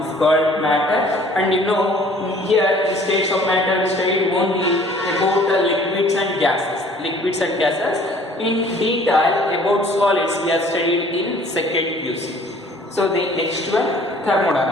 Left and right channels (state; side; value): normal; both; correlation 0.54